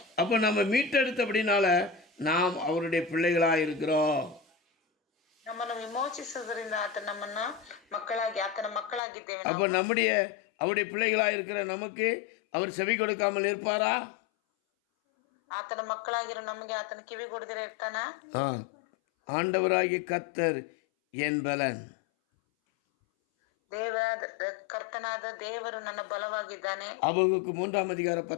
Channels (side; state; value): right; drops out; at 9.0 s